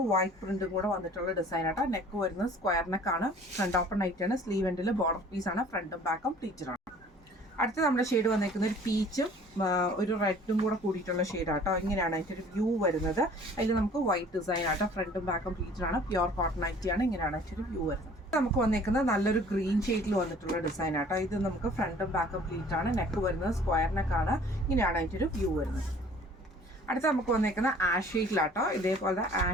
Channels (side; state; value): both; normal; correlation 0.51